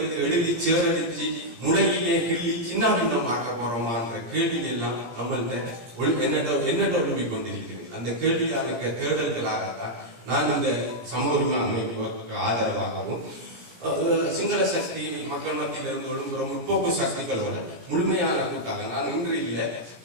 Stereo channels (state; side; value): late; left; 17 ms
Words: எழுதி சேரடிச்சு முளையிலே கிள்ளி சின்ன பின்னமாக்க போறோமா என்ற கேள்வி எல்லாம் நம்மள்கிட்ட என்னட்ட ஒழுங்கி கொண்டிருக்கிறது. அந்த கேள்வியான தேடல்களாகத்தான் நான் இந்த சமூக உரிமை அமைப்புக்கு ஆதரவாகவும் சிங்கள சக்தி மக்கள் மத்தியிலிருந்து ஒழுங்குற முற்போக்கு சக்திகளோட முழுமையான கூட்டாக நான் இன்று இல்லை,